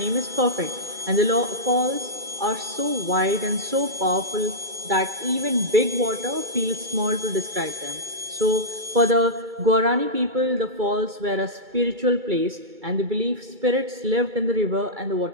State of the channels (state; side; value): late; left; 2.3 ms